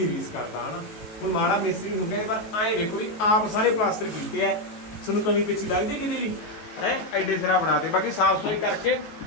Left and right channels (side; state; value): right; late; 18 ms